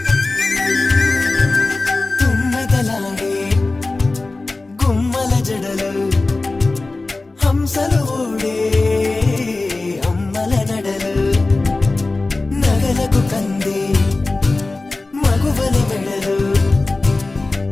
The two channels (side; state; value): right; quieter; 3.3 dB